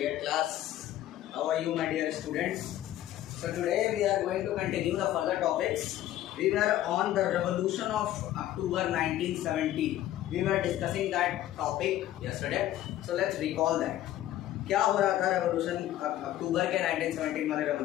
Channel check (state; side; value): quieter; right; 13.4 dB